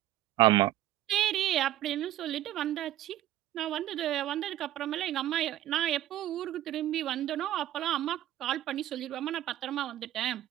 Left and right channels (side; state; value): left; quieter; 13.6 dB